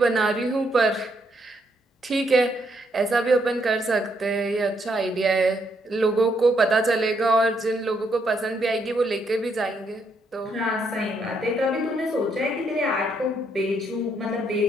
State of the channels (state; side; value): normal; both; correlation 0.74